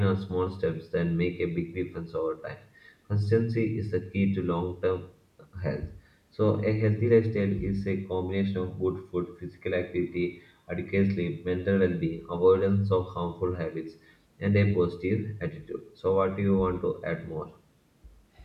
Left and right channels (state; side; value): identical; both; correlation 1.00